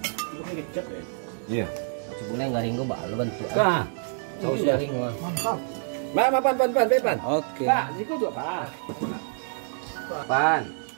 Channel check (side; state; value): left; silent; digital silence